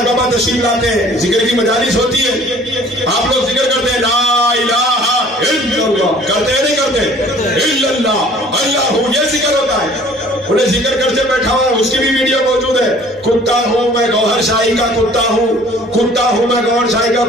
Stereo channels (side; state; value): both; normal; correlation 0.52